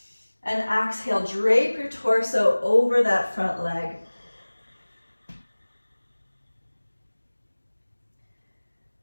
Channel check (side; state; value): both; inverted; correlation -1.00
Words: And exhale, drape your torso over that front leg.